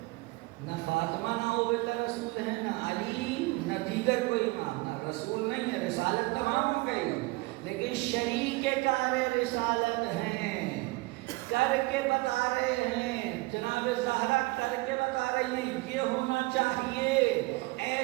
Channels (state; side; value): quieter; left; 23.1 dB